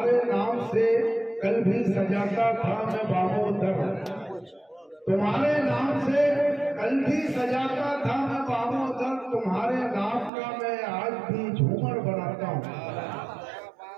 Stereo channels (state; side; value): drops out; left; at 10.3 s